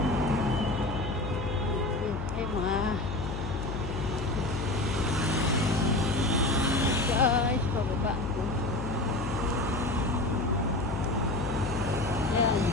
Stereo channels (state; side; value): noise; left; hum, 5 dB below the sound